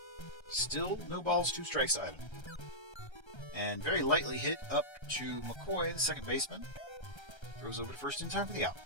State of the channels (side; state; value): right; late; 1.3 ms